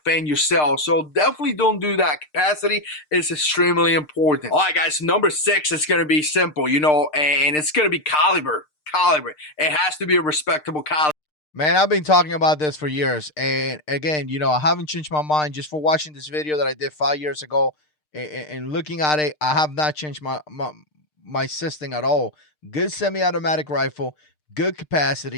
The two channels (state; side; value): late; right; 6.6 ms